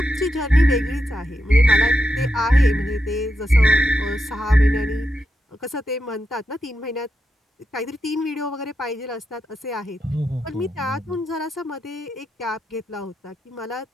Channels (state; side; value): normal; both; correlation 0.86